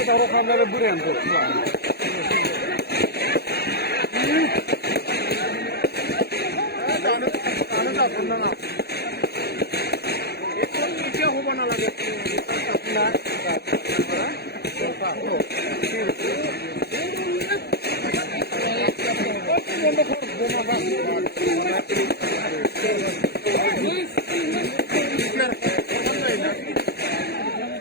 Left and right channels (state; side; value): late; right; 0.47 ms